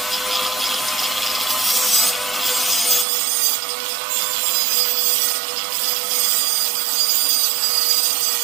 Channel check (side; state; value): left; drops out; at 3.1 s